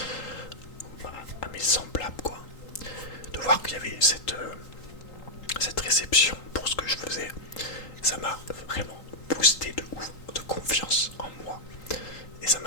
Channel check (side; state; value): right; late; 3.8 ms